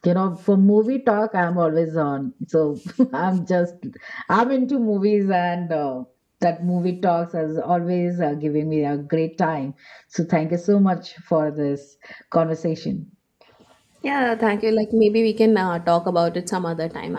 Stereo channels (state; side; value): identical; both; correlation 1.00